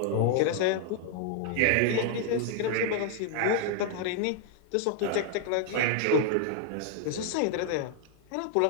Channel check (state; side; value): different; both; correlation 0.00